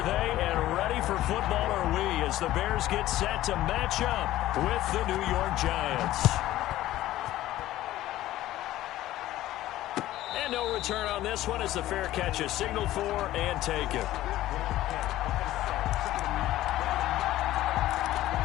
they, and ready for football are we as the Bears get set to match up with the New York Giants. And no return on this one as the fair catch is signaled for and taken.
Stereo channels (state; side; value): quieter; right; 14.9 dB